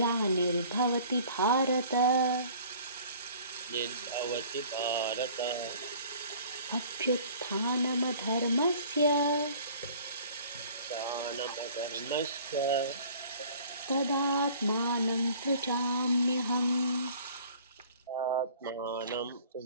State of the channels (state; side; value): inverted; both; correlation -0.49